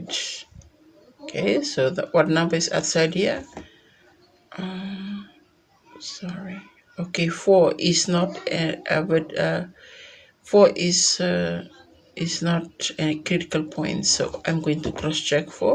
Okay, so what number is outside here? Sorry. Okay, 4 is not but 4 is not a critical point, so I'm going to cross check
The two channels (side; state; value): both; identical; correlation 1.00